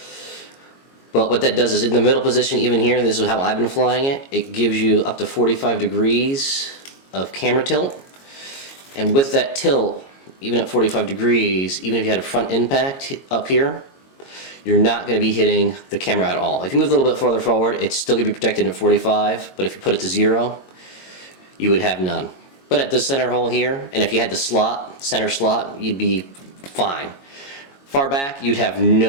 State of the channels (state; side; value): late; right; 22 ms